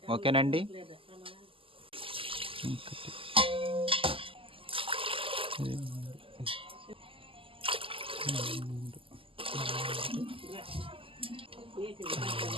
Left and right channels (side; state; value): left; late; 0.26 ms